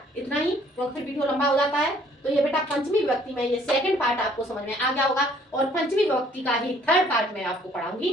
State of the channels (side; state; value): both; normal; correlation 0.60